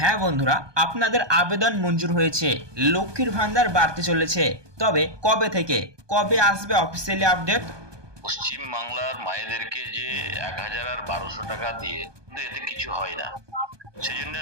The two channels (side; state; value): left; late; 1.2 ms